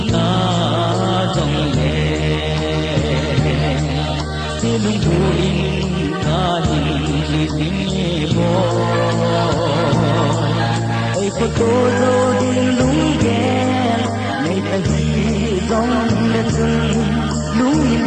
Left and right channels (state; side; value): identical; both; correlation 1.00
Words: lung thu in ta hình tình bò ơi có tô dâu đi lung ghen ngày ta hi dòng lên xuân lung